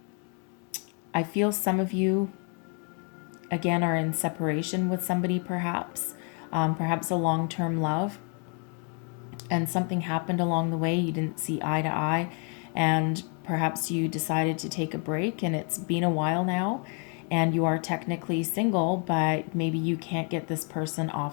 I feel some of you, again, are in separation with somebody, perhaps a long-term love, and something happened along the way. You didn't see eye to eye, and perhaps you decided to take a break, and it's been a while now, and you are technically single, but maybe you can't get this person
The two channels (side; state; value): right; quieter; 38.5 dB